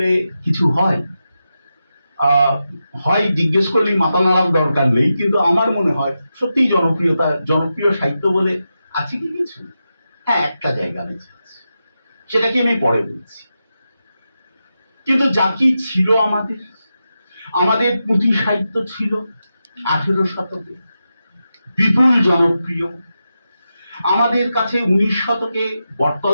কিছু হয়, হয় জিজ্ঞেস করলেই মাথা নাড়ার দরকার নেই, কিন্তু আমার মনে হয় সত্যিই জনপ্রিয় সাহিত্য বলে আছে কি কিছু? হ্যাঁ, একটা জায়গা বেঁচে আছে, সেটাকে আমি পরে বলছি। কিন্তু যা কি ছিল আমাদের পুঁথি সাহিত্য ছিল 18 শতকে, বিপুল জনপ্রিয়। আমাদের কাছে 19 শতকে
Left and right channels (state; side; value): inverted; both; correlation -0.89